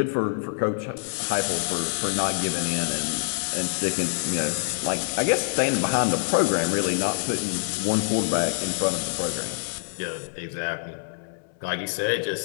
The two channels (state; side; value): silent; right; 61 dB below the other